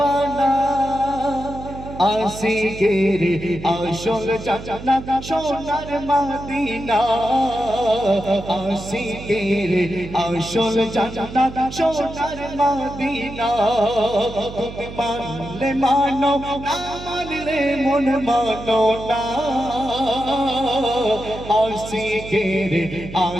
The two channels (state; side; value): noise; right; hum, 12 dB below the sound